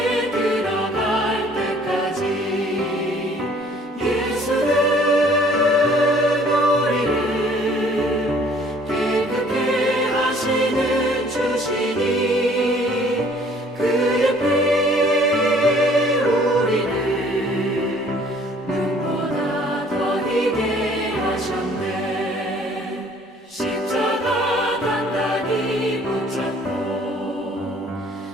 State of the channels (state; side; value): normal; both; correlation 0.56